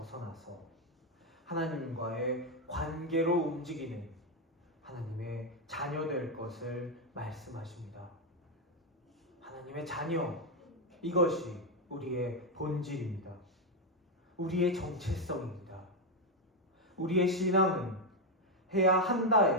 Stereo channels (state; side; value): normal; both; correlation 0.04